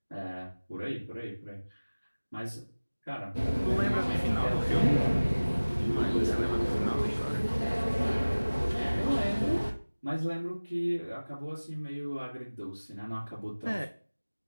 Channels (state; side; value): inverted; both; correlation -1.00